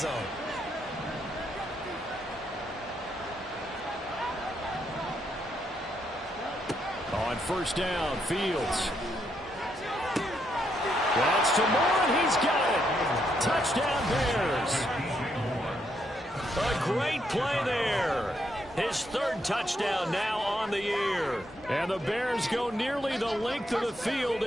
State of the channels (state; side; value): normal; both; correlation 0.77